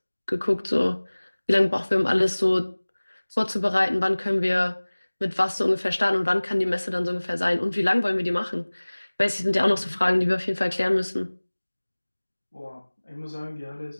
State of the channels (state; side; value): inverted; both; correlation -1.00